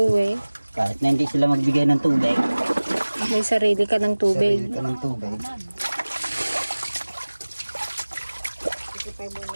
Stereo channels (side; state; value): both; inverted; correlation -1.00